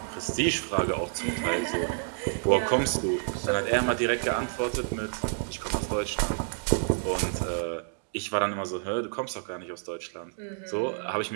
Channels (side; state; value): left; silent; digital silence